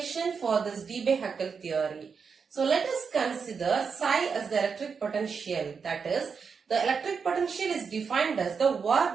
for this Debye Huckel theory. So let us consider psi as the electric potential. That is, the electric potential is defined as the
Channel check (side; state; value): left; quieter; 5.8 dB